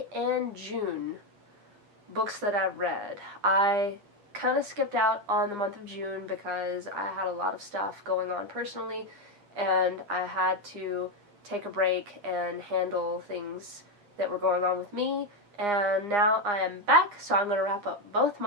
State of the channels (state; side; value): late; left; 9.8 ms